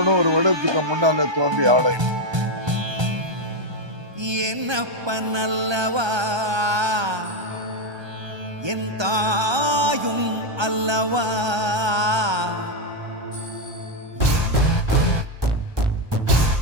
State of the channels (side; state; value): left; late; 1.2 ms